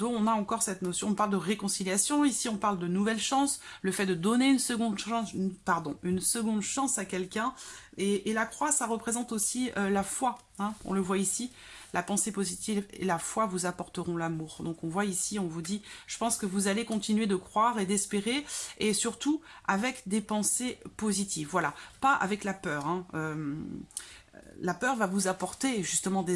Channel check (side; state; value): both; identical; correlation 1.00